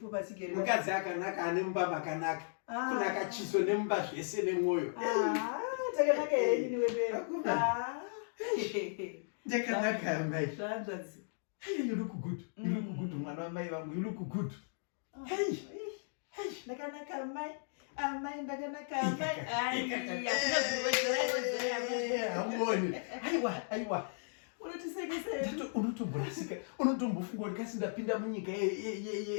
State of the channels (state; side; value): silent; right; digital silence